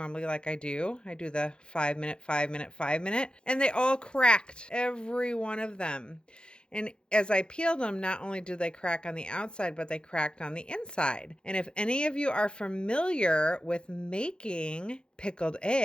like I do. I do the 5 minute, 5 minute, 5 minute. And they all cracked, every one of them. And as I peeled them, not only did they crack on the outside, but they cracked on the inside. And if any of you are familiar with making pickled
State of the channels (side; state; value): right; late; 0.050 ms